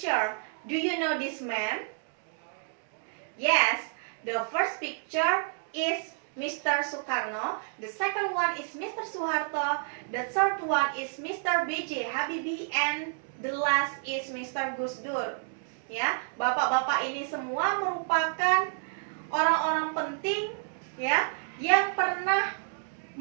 Do you know this man? Yes, the first picture is Mr. Soekarno, the second one is Mr. Soeharto, the third one is Mr. B.J. Habibie, and the last is Mr. Gus Dur. Ya, bapak-bapak ini semua merupakan orang-orang penting ya yang pernah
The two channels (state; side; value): silent; left; digital silence